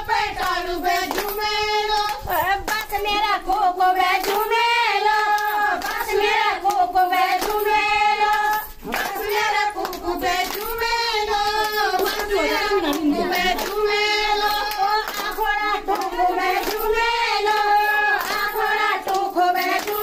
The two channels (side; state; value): both; identical; correlation 1.00